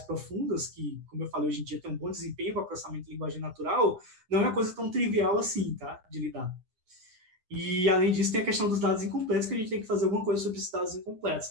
que, como eu falei, hoje em dia tem um bom desempenho para processamento de linguagem natural, não é uma coisa tão trivial assim, tá, de lidar. E, além disso, tem a questão dos dados incompletos, que a gente tem que fazer alguma coisa sobre esses dados incompletos,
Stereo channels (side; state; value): left; late; 9.7 ms